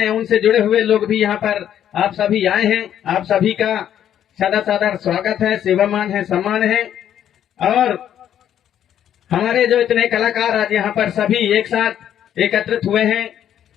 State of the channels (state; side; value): quieter; right; 10.3 dB